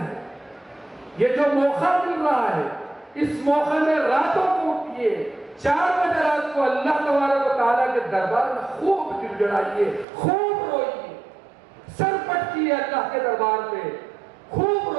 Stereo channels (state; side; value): drops out; left; at 10.1 s